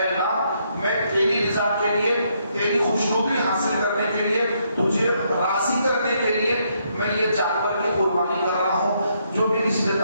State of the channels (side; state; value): both; inverted; correlation -0.74